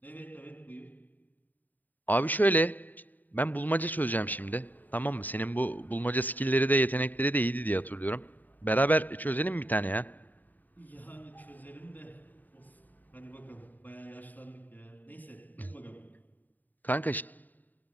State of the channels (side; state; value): right; late; 0.086 ms